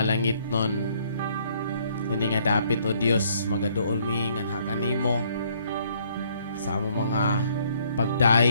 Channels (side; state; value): both; inverted; correlation -0.65